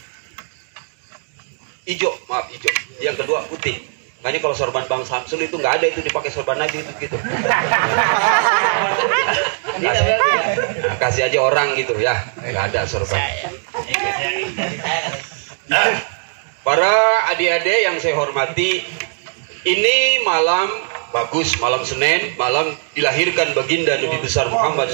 hijau. Yang kedua putih. Makanya kalau sorban Bang Samsul itu nggak ada itu dipakai sorban Nabi itu gitu. Nah, kasih aja orang gitu ya, nggak ada sorban. Para adik-adik yang saya hormati, ini malam bagus, malam Senin, malam dilahirkan baginda Nabi besar Muhammad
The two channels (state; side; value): silent; left; digital silence